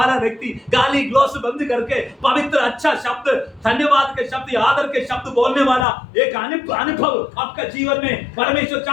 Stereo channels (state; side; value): drops out; right; at 5.9 s